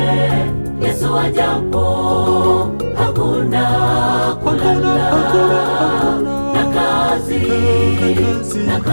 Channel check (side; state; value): both; inverted; correlation -1.00